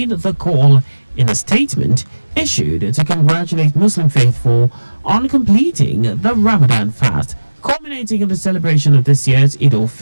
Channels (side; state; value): both; inverted; correlation -1.00